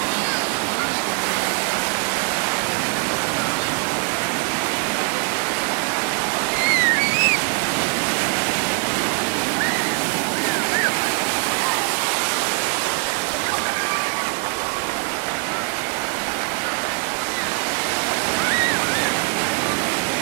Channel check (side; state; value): left; quieter; 36.1 dB